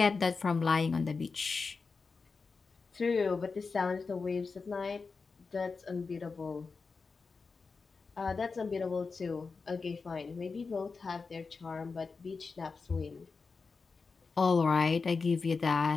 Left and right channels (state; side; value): quieter; right; 4.6 dB